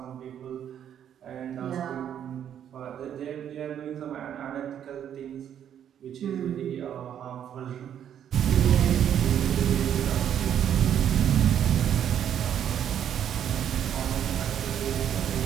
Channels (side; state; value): left; quieter; 9.6 dB